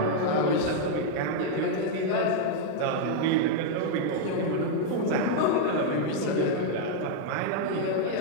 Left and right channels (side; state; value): both; different; correlation 0.00